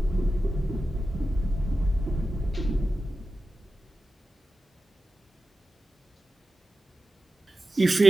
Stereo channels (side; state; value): both; normal; correlation 0.93